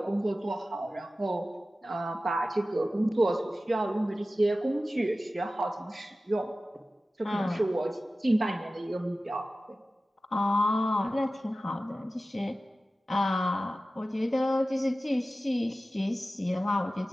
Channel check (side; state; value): both; normal; correlation 0.95